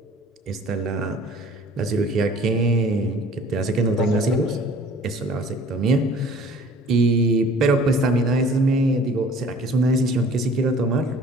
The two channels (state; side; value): normal; both; correlation 0.50